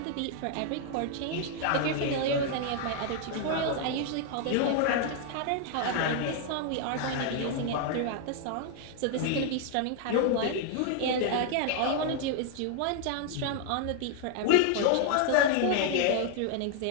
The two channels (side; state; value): both; different; correlation 0.00